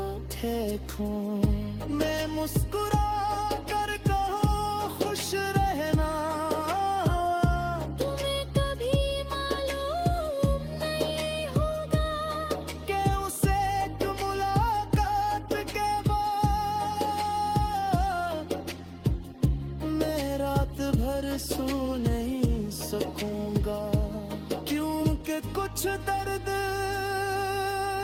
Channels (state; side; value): identical; both; correlation 1.00